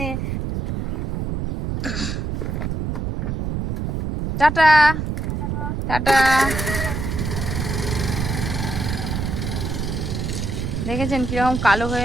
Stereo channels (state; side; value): noise; right; rumble, 2 dB below the sound